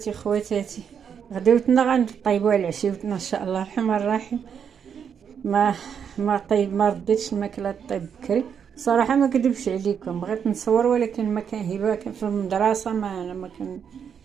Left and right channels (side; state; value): left; quieter; 7.5 dB